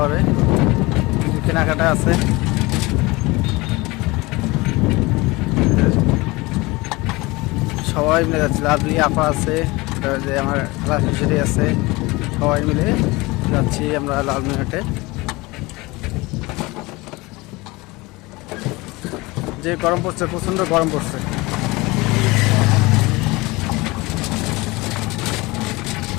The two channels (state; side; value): quieter; right; 22.8 dB